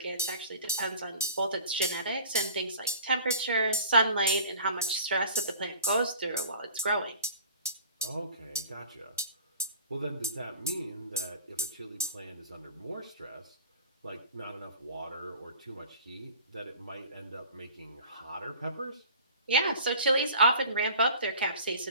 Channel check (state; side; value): inverted; both; correlation -0.44